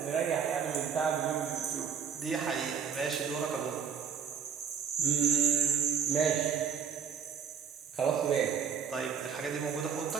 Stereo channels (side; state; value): left; quieter; 7.1 dB